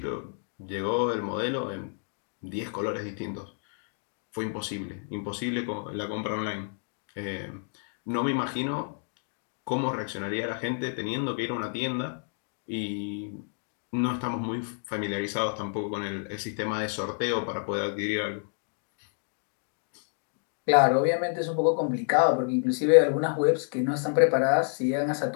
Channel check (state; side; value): silent; right; 58 dB below the other